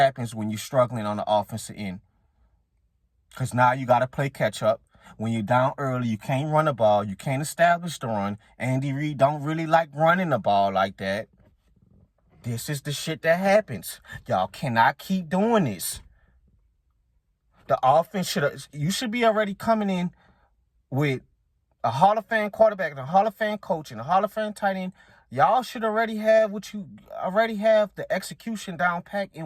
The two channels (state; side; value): identical; both; correlation 1.00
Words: when you're struggling on the offensive end. Because now you got to play catch-up. When you're down early, you can't run the ball. You can't establish the run. Andy Reid don't really like running the ball like that. This is the shit that happens. Y'all cannot keep doing this. The offense you should be already coming in with a Hall of Fame quarterback and a Hall of Fame coach and a Hall of Fame tight end. Y'all should already have the execution down pat